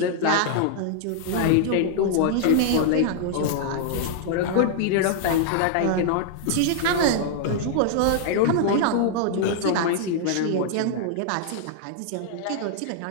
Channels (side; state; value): both; different; correlation -0.01